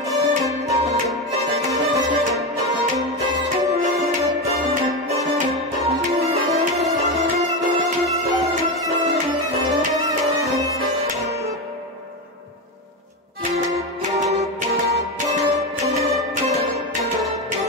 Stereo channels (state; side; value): normal; both; correlation 0.15